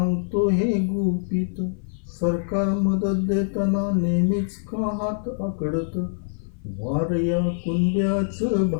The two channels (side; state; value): right; silent; 56 dB below the other